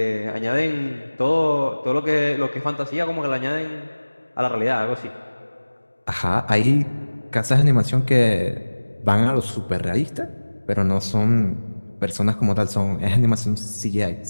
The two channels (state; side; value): inverted; both; correlation -1.00